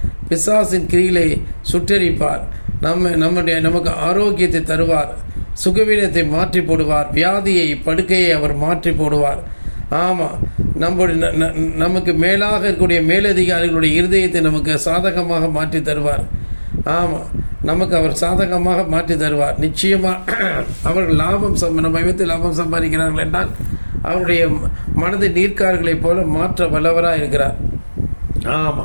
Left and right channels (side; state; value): both; inverted; correlation -1.00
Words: பிசாசின் கிரிகளை சுட்டரிப்பார், நமக்கு ஆரோக்கியத்தை தருவார், சுகவீனத்தை மாற்றி போடுவார், வியாதியை படுக்கையை அவர் மாற்றி போடுவார். ஆமாம், நமக்கு மேலாக இருக்கக்கூடிய மேலதிகாரிகளுடைய இருதயத்தை நமக்கு சாதகமாக மாற்றி தருவார். ஆமாம், நமக்கு அவர் சாதகமாக மாற்றி தருவார். நிச்சயமாக அவர்கள் நம்ம விதத்தில் லாபம் சம்பாதிக்கிறார்கள் என்றால் அவருடைய மனதை நீர்க்கார்களைப் போல மாற்ற வல்லவராக இருக்கிறார்.